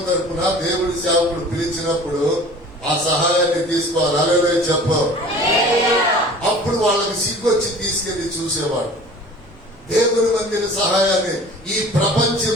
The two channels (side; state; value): both; normal; correlation 0.44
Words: తరపున దేవుడి సేవకుడు పిలిచినప్పుడు ఆ సహాయాన్ని తీసుకోవాలి. హల్లెలూయా చెప్పు. అప్పుడు వాళ్ళకి సిగ్గొచ్చి తీసుకెళ్లి చూసేవాడు. దేవుని మందిర సహాయాన్ని. ఈ